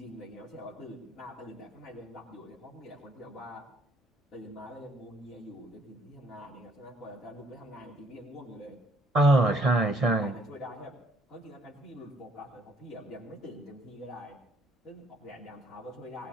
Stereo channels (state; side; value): normal; both; correlation 0.65